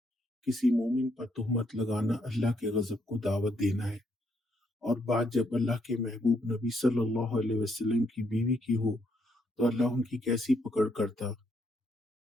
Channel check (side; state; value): both; normal; correlation 0.74